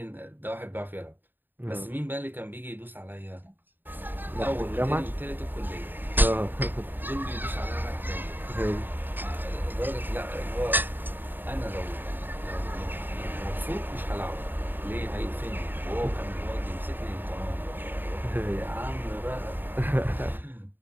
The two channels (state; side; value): late; left; 0.093 ms